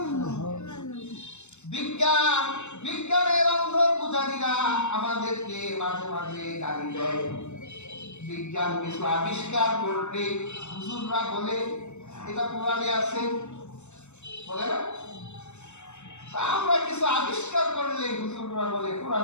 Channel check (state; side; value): late; right; 0.83 ms